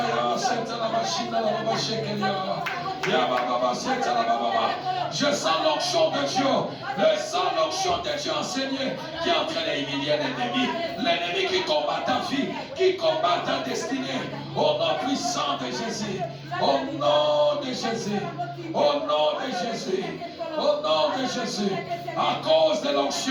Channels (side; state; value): both; identical; correlation 1.00